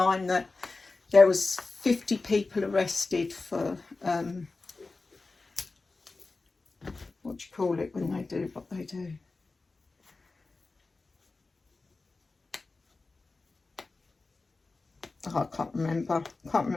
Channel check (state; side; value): quieter; right; 3.7 dB